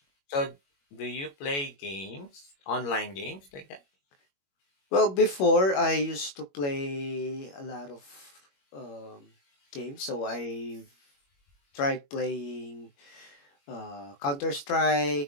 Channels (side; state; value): right; late; 21 ms